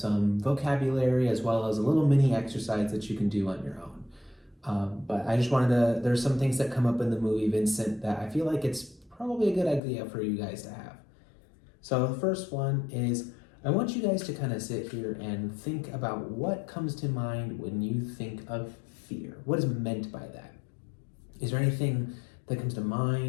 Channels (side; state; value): right; drops out; at 9.8 s